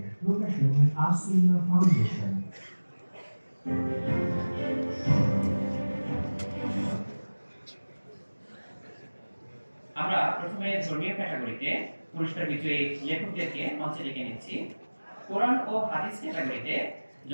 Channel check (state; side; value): inverted; both; correlation -1.00